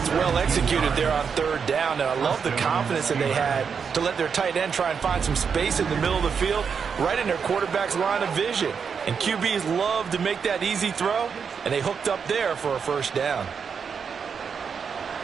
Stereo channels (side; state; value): left; quieter; 6.3 dB